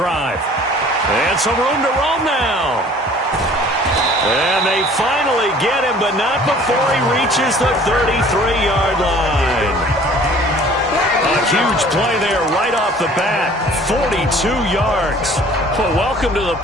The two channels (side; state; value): both; normal; correlation 0.51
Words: And some room to roam now. And they finally get him, but not before he reaches the 33-yard line. A huge play there right off the bat. 42 yards. Well, welcome to the